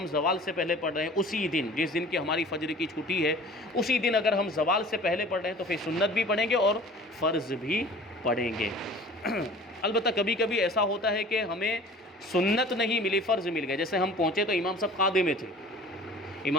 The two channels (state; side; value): normal; both; correlation 0.44